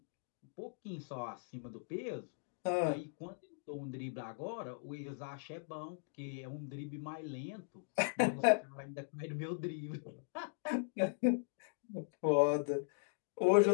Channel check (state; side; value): silent; right; digital silence